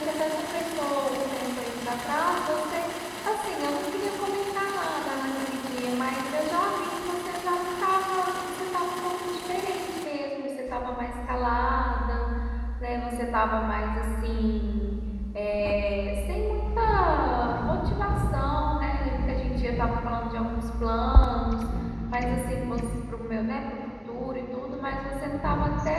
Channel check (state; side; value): identical; both; correlation 1.00